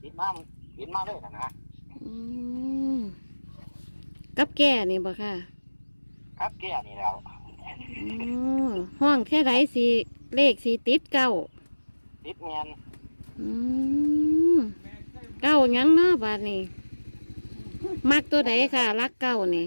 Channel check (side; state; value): both; inverted; correlation -1.00